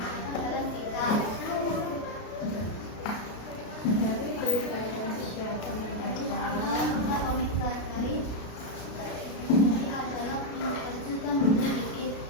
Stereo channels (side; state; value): right; late; 33 ms